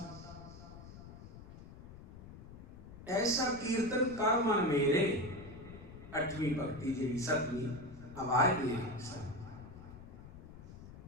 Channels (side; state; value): left; noise; rumble, 15 dB below the sound